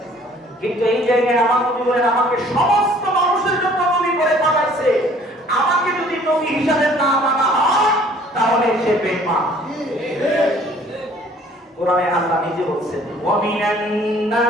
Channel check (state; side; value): normal; both; correlation 0.56